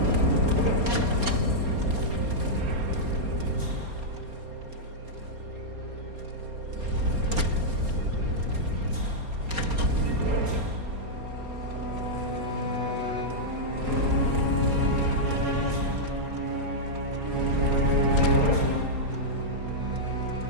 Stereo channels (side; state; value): left; late; 4.3 ms